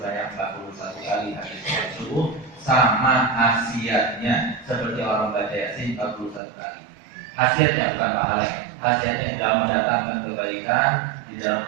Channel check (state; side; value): drops out; left; at 6.4 s